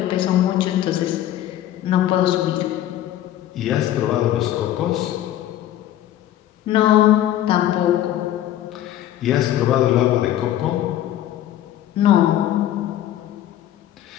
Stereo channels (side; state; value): right; quieter; 12.5 dB